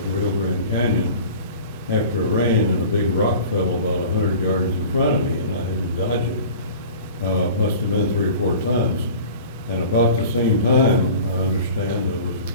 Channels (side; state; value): both; inverted; correlation -0.41